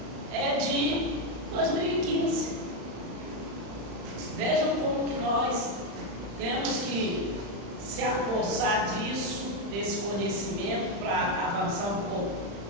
É de 2015. Vejam como que nós temos que se apossar desse conhecimento para avançar um pouco.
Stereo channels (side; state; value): left; late; 35 ms